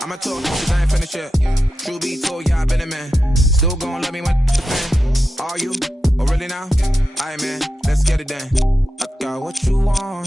I'ma talk cause I ain't finished yet. True be told, yeah, I been a man. Still gon' love me when the fan. Are you? Oh really now? Aight man, let's get it done. I got what you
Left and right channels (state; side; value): normal; both; correlation 0.90